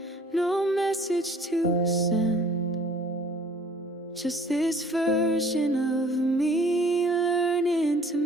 no message to send, just this version of me learning to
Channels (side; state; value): both; normal; correlation 0.54